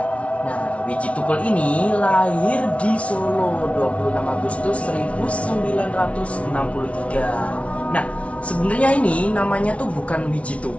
Nah, Wiji Tukul ini lahir di Solo 26 Agustus 1963. Nah, sebenarnya ini namanya tuh bukan Wiji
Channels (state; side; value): late; right; 0.063 ms